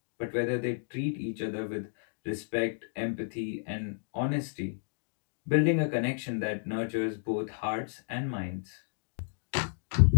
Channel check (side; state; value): right; silent; digital silence